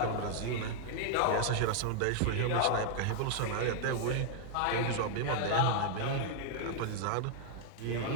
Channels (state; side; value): different; both; correlation 0.00